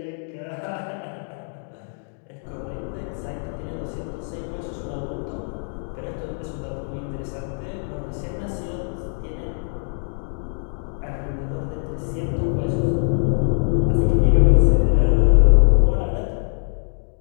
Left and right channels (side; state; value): right; silent; 60 dB below the other